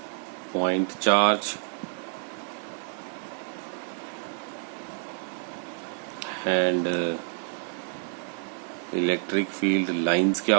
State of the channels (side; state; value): left; silent; 59 dB below the other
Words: point charge and electric field lines क्या